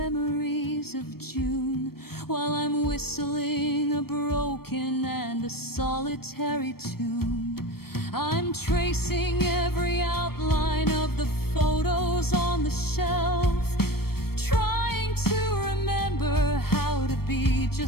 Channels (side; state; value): right; late; 0.94 ms